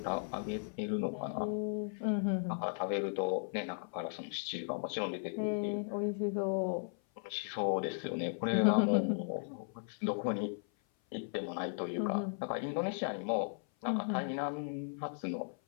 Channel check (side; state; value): right; silent; 54 dB below the other